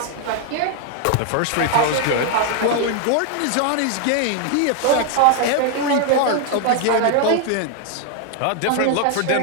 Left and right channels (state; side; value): different; both; correlation 0.00